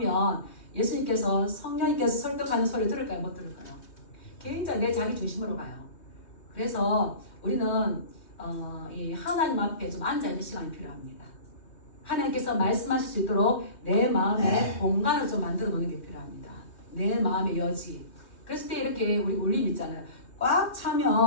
예수님께서 성령님께서 설득하는 소리를 들을까요? 못 들을까요? 굉장히 내 자기 중심으로 가요. 그래서 우리는 이 하나님 앞에 좀 앉아있는 시간이 필요합니다. 하나님께서 말씀하실 수 있도록 내 마음에 공간을 좀 만들어 놓는 게 필요합니다. 내 마음의 여지. 그랬을 때 이렇게 우리 울림 있잖아요. 꽉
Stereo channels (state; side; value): late; right; 2.6 ms